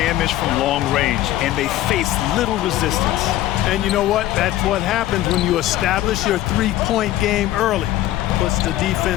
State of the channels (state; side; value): quieter; right; 14.3 dB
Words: from long range, and they faced little resistance. And you know what? That's what happens when you establish your three-point game early. Puts the